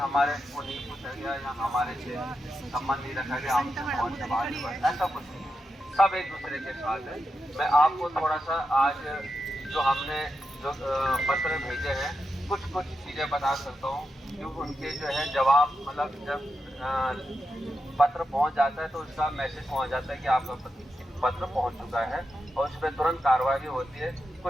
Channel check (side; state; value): both; normal; correlation 0.87